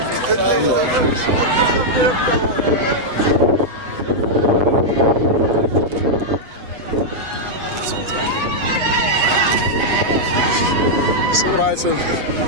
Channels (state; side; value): late; left; 7.8 ms